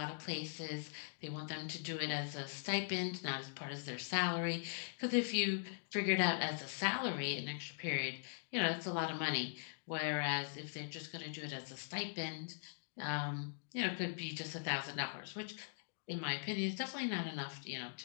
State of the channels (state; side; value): silent; right; digital silence